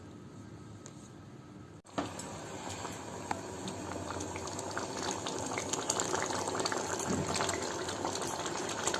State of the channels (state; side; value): identical; both; correlation 1.00